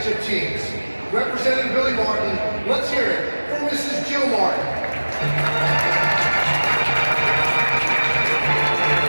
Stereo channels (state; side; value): inverted; both; correlation -1.00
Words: teams. Representing Billy Martin, let's hear it for Mrs. Jill Martin.